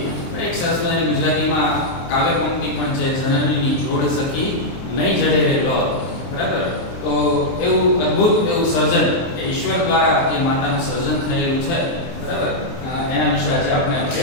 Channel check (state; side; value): late; right; 23 ms